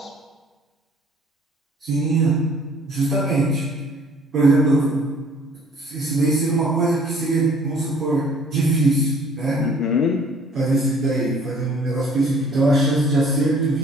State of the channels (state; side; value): normal; both; correlation 0.55